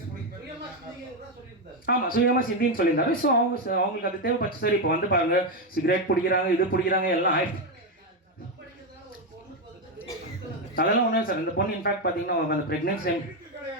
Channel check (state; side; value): normal; both; correlation 0.08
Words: ஆமாம், சுயமாக சிந்தின்னு சொல்லியிருந்தாரு. ஸோ அவங்களுக்கு அது தேவைப்பட்டு சார். இப்போ வந்து பாருங்கள், சிகரெட் பிடிக்கிறாங்க, இது பிடிக்கிறாங்க, எல்லாம் ஆயிடுச்சு. அதெல்லாம் ஒன்றும் சார். இந்த பொண்ணு இன்ஃபேக்ட் பார்த்தீங்கன்னா அந்த ப்ரெக்னென்சி டைம்